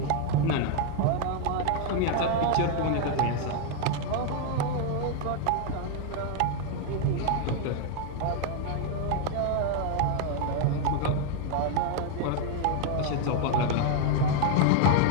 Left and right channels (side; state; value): both; different; correlation 0.00